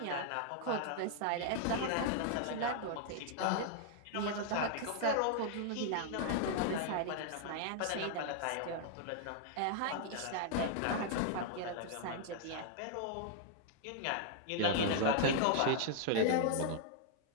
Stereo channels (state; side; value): different; both; correlation -0.01